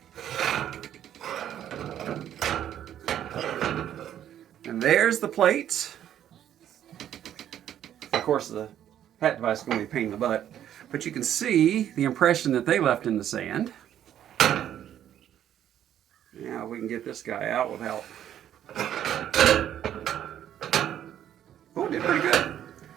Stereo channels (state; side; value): quieter; left; 10.7 dB